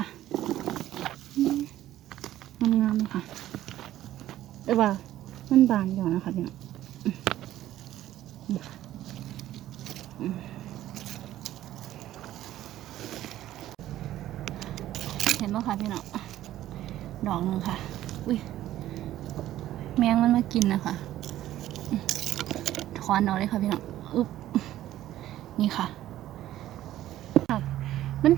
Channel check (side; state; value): left; quieter; 13.6 dB